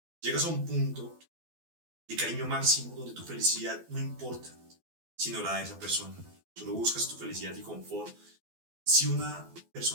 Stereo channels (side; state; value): left; late; 12 ms